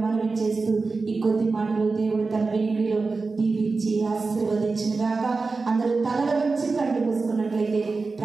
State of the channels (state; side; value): quieter; left; 4.0 dB